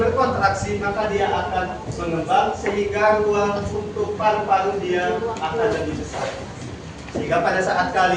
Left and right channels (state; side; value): identical; both; correlation 1.00